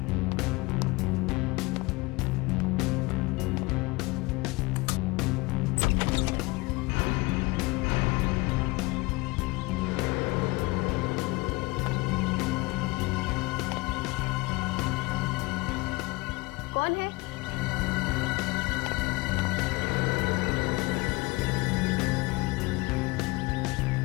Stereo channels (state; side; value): quieter; right; 24.2 dB